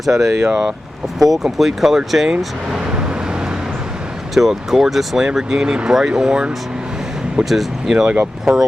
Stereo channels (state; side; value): normal; both; correlation 0.94